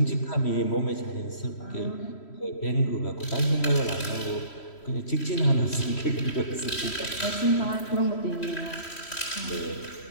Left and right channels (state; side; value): late; right; 3.1 ms